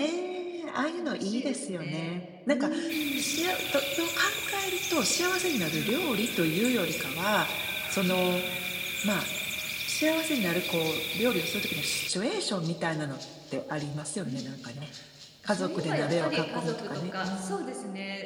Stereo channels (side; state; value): both; identical; correlation 1.00